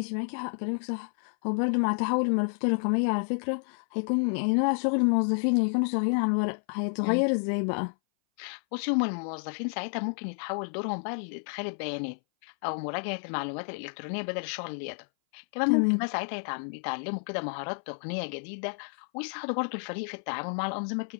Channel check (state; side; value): silent; right; 58 dB below the other